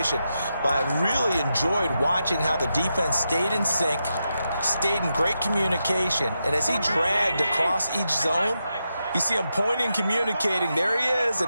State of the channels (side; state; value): both; inverted; correlation -0.87